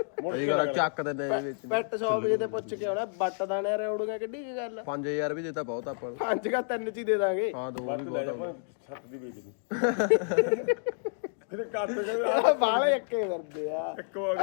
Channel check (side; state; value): right; silent; digital silence